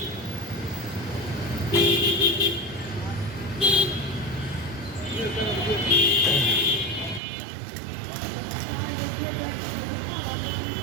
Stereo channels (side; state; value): left; drops out; at 7.2 s